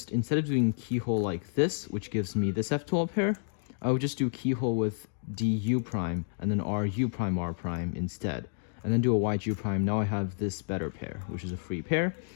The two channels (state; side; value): silent; right; digital silence